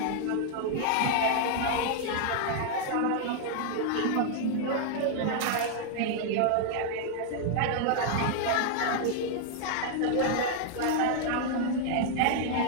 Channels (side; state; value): both; different; correlation 0.00